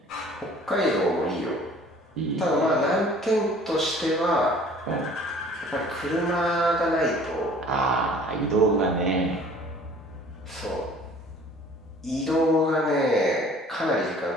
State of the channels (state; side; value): normal; both; correlation 0.51